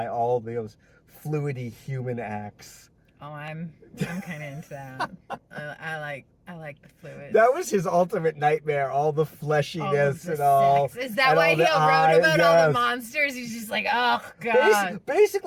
all those fluidy human acts. Oh, I'm kind of into that. I like the fluids. That was his ultimate nightmare, all the fleshiness the and all. sex. Is that why he wrote about all the monsters? He's just like, oh, God.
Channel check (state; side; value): identical; both; correlation 1.00